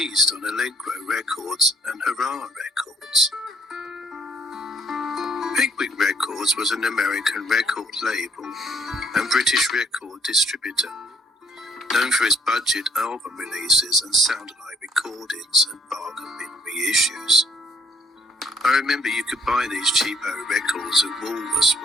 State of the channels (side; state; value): both; normal; correlation 0.64